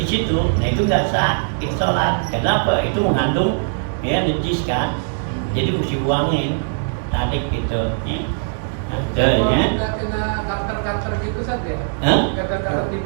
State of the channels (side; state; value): left; silent; digital silence